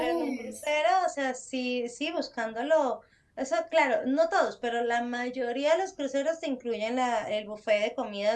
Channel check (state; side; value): identical; both; correlation 1.00